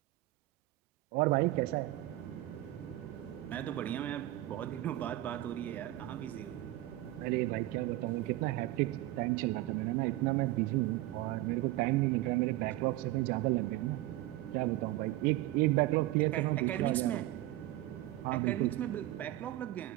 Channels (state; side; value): quieter; left; 16.4 dB